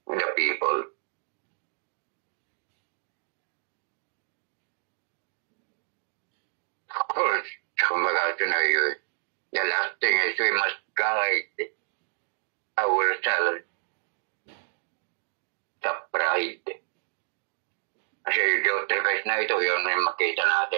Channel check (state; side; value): silent; left; 57 dB below the other